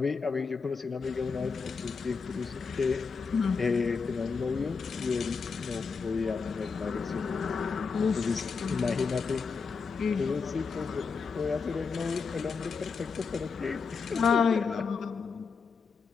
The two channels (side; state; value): right; quieter; 5.1 dB